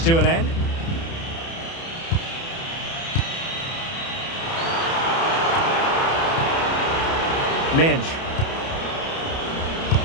to an end. Mendes.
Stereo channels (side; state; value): right; late; 30 ms